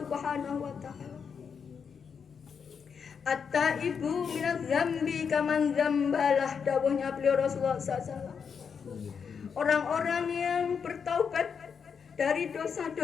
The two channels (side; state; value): right; quieter; 6.5 dB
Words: wa Ta'ala. At-taibu minadz dzambi kaman dzambalah, dawuhnya beliau Rasulullah SAW. Orang-orang yang bertaubat dari